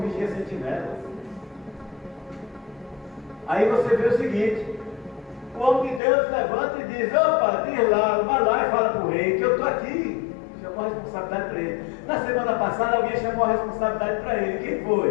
sentinelas. Aí você vê o seguinte: o homem de Deus levanta e diz: opa, diz lá, vai lá e fala para o rei que eu estou aqui. Chamou a responsabilidade para ele. Na semana passada alguém chamou a responsabilidade para ele. Quem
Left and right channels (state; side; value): drops out; right; at 6.0 s